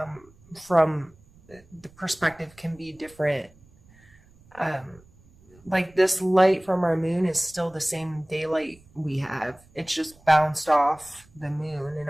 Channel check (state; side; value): noise; right; rumble, 27 dB below the sound